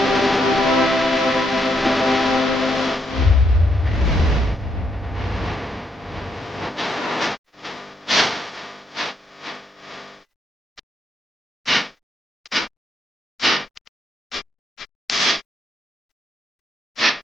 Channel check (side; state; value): both; normal; correlation 0.76